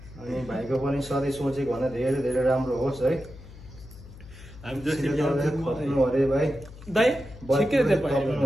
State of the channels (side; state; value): left; noise; hum, 18 dB below the sound